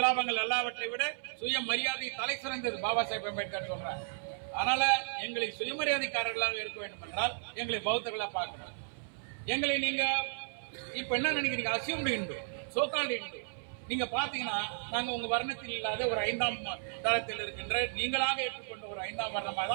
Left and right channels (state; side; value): silent; left; 55 dB below the other